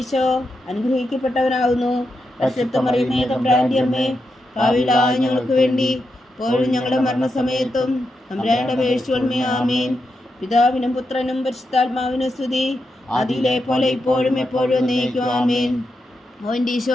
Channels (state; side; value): normal; both; correlation 0.86